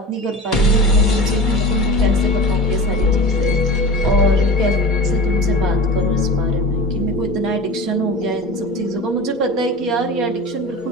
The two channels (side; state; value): both; normal; correlation 0.33